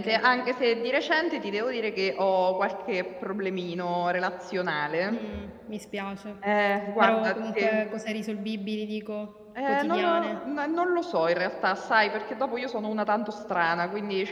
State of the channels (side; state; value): both; identical; correlation 1.00